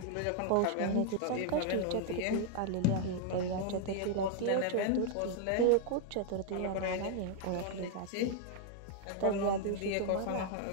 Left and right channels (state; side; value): different; both; correlation 0.00